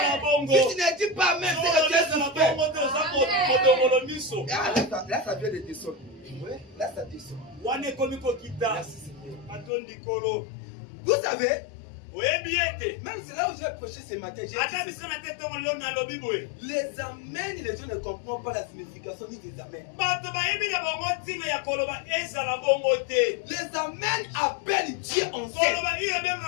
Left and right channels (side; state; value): right; drops out; at 9.7 s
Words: Si tu ne dis pas amen, c'est que tu es suspect. Ah, là, ça vient de descendre. Ouais, là, ça descend. Merci, Seigneur. Vous savez, Même c'est là où j'ai prêché ce matin. J'ai dit les amens, les gens ne comprennent pas la signification ni des amens. Les amens appellent Dieu en scène.